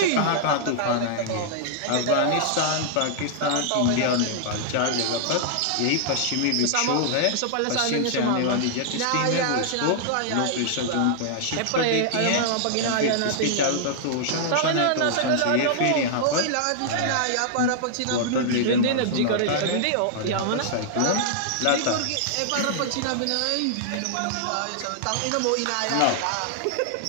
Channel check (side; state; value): both; different; correlation -0.01